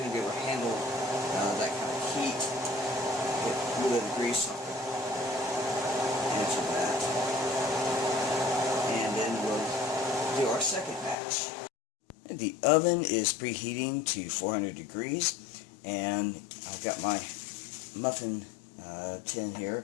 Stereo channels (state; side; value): drops out; right; at 11.2 s